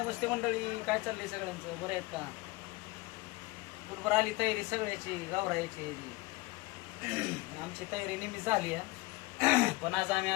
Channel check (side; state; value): right; quieter; 22.2 dB